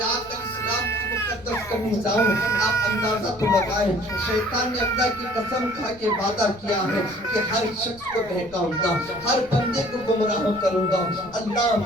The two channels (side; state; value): right; noise; rumble, 23 dB below the sound